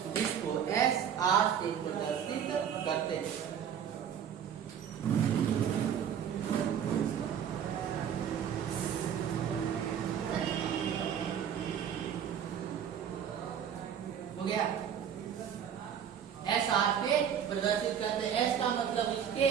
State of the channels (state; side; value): quieter; left; 8.6 dB